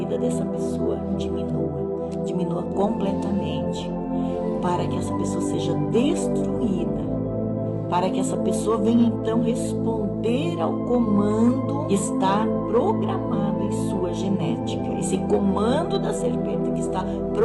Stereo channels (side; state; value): both; identical; correlation 1.00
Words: dessa pessoa diminua completamente, para que essa pessoa seja destruída, para que essa pessoa venha, então, responder ao comando que está programado em sua genética. Esse comando da serpente que está